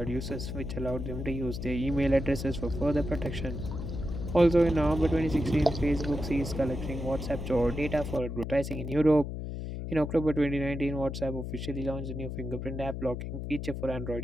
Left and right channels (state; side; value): noise; left; hum, 6 dB below the sound